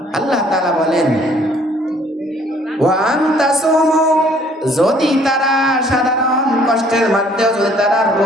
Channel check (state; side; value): normal; both; correlation 0.59